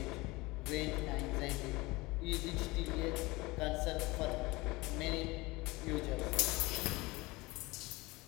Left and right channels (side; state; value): right; quieter; 22.4 dB